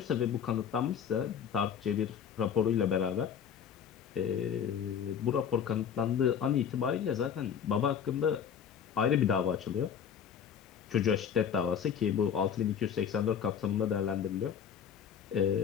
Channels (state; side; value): quieter; right; 7.9 dB